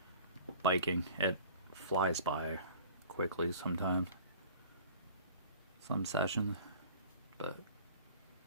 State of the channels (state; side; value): inverted; both; correlation -0.45